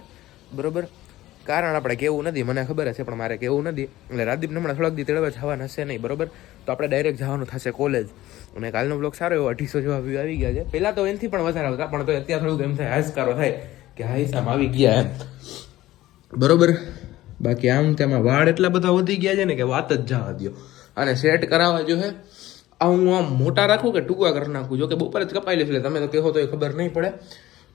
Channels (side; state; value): right; quieter; 15.8 dB